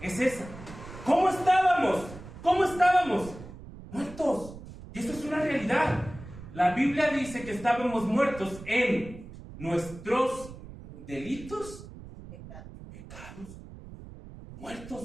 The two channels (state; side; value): noise; right; rumble, 15 dB below the sound